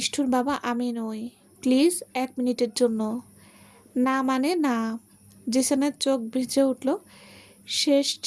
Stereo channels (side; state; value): both; identical; correlation 1.00